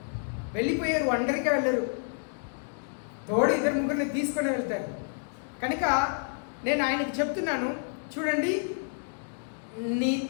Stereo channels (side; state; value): right; silent; digital silence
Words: వెళ్ళిపోయారు, ఒంటరిగా వెళ్ళరు, తోడు 2-3 తీసుకొని వెళ్తారు. కనుక నేను ఆయనకి చెప్తున్నాను, చూడండి